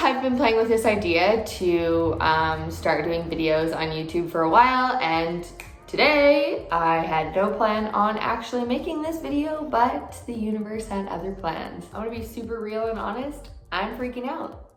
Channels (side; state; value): both; identical; correlation 1.00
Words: been playing with this idea to start doing videos on YouTube for a while, and today I had no plan on actually making this video, but the universe had other plans. I want to be super real and honest. I'm freaking out.